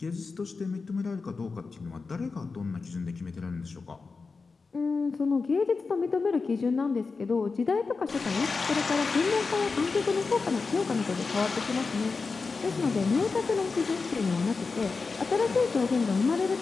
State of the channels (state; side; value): quieter; right; 4.4 dB